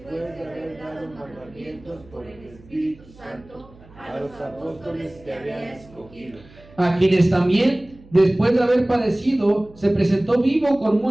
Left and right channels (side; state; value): right; noise; hum, 24 dB below the sound